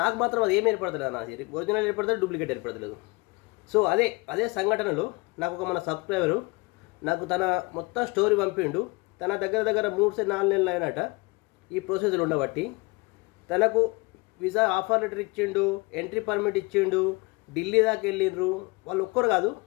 నాకు మాత్రం అది ఏమి ఏర్పడతలేదు, నా ఒరిజినల్ ఏర్పడతలేదు, డూప్లికేట్ ఏర్పడతలేదు. సో అదే సంఘటనలో నాకు ఒక మన సబ్స్క్రైబరు నాకు తన మొత్తం స్టోరీ పంపిండు. తన దగ్గర 3-4 నెలలు అయినట ఈ ప్రొసీజర్ ఉండబట్టి. తనకు వీసా ఆఫర్ లెటర్ ఇచ్చిండు, ఎంట్రీ పర్మిట్ ఇచ్చిండు, ఢిల్లీ దాకా వెళ్ళిండ్రు. వాళ్ళు ఒక్కరు కాదు,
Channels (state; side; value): quieter; right; 26.2 dB